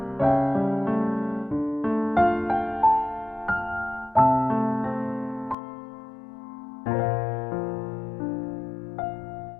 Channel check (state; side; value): drops out; right; at 5.6 s